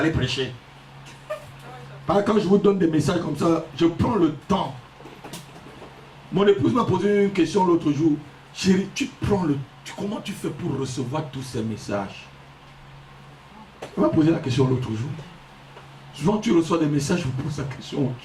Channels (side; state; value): both; identical; correlation 1.00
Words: prêcher. Quand je vous donne des messages comme ça, je prends le temps. Mon épouse m'a posé une question l'autre jour. Chérie, comment tu fais pour recevoir tous ces messages? Elle m'a posé la question l'autre jour. Souvent tu reçois des messages, je vous pose la question,